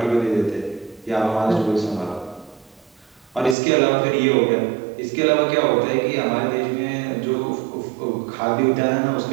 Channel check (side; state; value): left; drops out; at 3.6 s